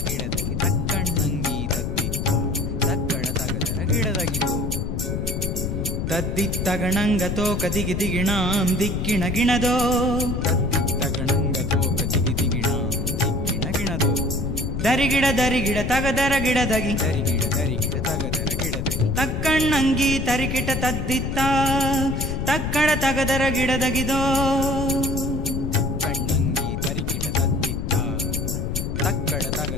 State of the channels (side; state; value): left; noise; rumble, 2 dB below the sound